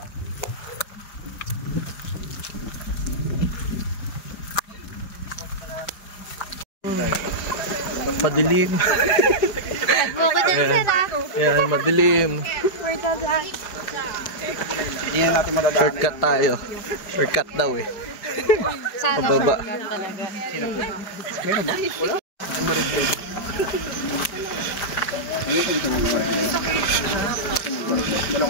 Madilim. Yan, madilim. Hindi na natin madadaanan. Shortcut tayo. Shortcut daw eh. Pababa. Meron ba? Wala. Ang marigay.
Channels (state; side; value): late; right; 4.9 ms